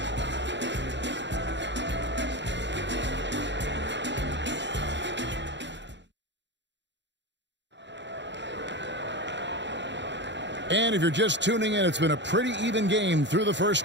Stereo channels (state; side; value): late; left; 0.52 ms